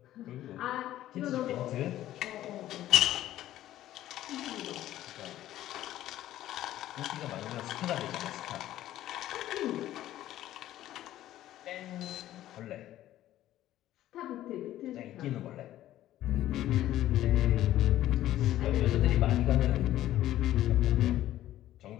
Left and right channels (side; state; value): right; quieter; 13.6 dB